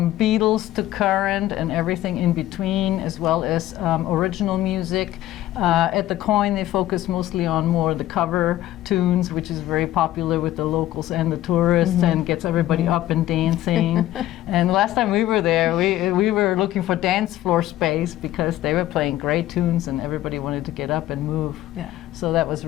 Beatles to current and everything in between, as well as original music. At the Coin, they focus mostly on more the cover tunes, which is very popular with the locals and the tourists, and gets everybody up and dancing. And last time we were there, we were looking for dance floor space because they were playing great tunes and everybody wanted to get up and move. Yeah. So that was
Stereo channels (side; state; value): right; quieter; 14.3 dB